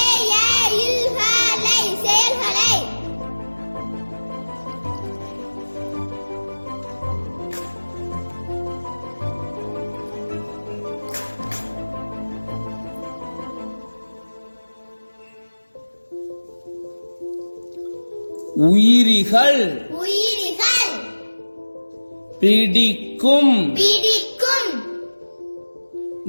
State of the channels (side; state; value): both; inverted; correlation -1.00